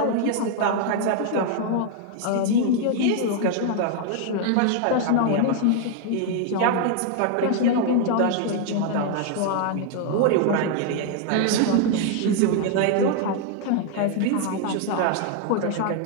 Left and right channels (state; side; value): different; both; correlation 0.00